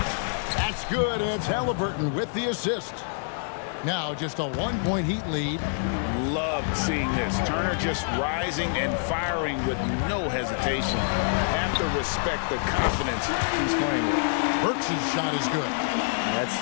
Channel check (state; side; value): silent; right; digital silence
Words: That's good, and it's Halliburton with the assist. Now just a 1-point Heat lead. Loved seeing this. Turner just rising and firing with no hesitation. Have to respect the confidence he's playing with. Burks' shot is good.